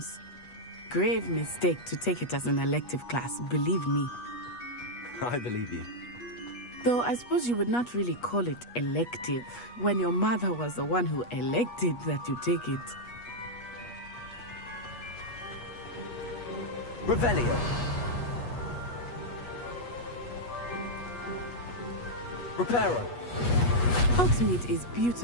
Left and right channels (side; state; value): right; late; 8.3 ms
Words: Grave mistake to take it as an elective class, believe me. I believe you. Though I suppose you would not really call it elective, when your mother was the one who elected that you take it. Revelio. Reparo. Hogsmeade is